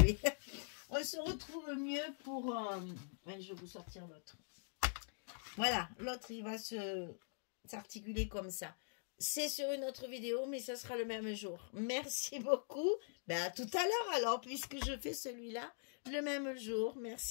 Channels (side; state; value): right; silent; digital silence